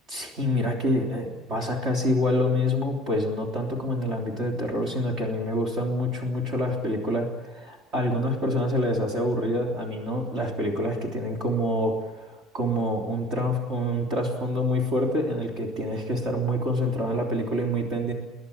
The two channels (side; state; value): both; normal; correlation 0.47